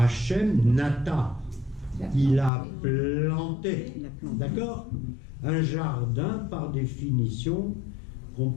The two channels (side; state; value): right; drops out; at 2.5 s